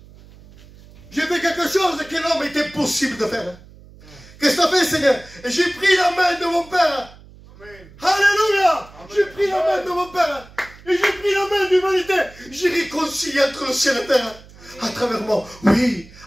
J'ai fait quelque chose que l'homme était impossible de faire. Qu'est-ce que tu as fait, Seigneur? Et j'ai pris la main de mon Père. Amen. Alléluia. J'ai pris la main de mon Père. Et j'ai pris la main de l'humanité. J'ai réconcilié entre le ciel et la terre. À travers moi. Oui,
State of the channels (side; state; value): right; noise; hum, 22 dB below the sound